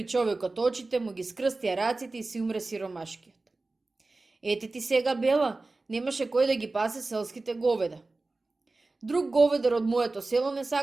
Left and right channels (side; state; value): left; quieter; 3.3 dB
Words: човекот очите, му ги скрстија раците и си умре сиромашкиот. Ете ти сега бела, немаше кој да ги пасе селските говеда. Друг говедар од моето село не